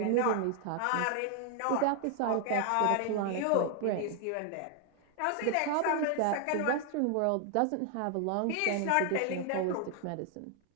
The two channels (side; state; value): both; different; correlation 0.00